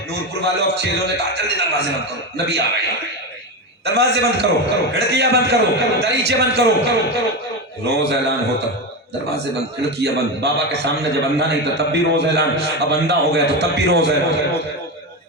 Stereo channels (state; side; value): normal; both; correlation 0.16